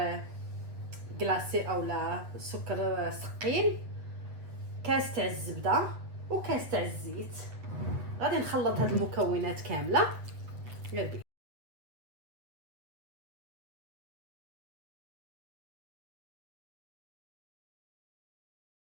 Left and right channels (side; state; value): left; late; 8.1 ms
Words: كلاصي اولا سكر ثقيل، كاس تاع الزبده وكاس تاع الزيت. غادي نخلط هاد المكونات كامله غير بي.